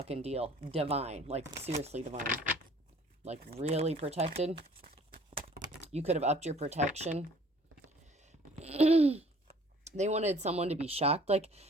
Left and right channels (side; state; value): both; normal; correlation 0.54